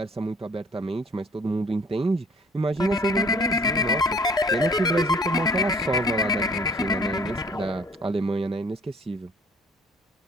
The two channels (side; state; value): both; normal; correlation 0.55